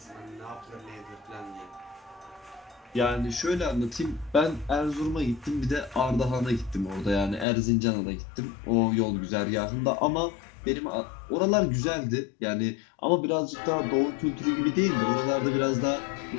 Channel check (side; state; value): right; drops out; at 7.5 s